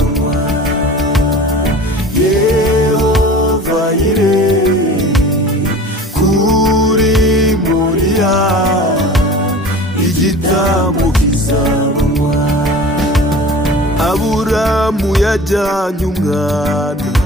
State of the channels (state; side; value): normal; both; correlation 0.39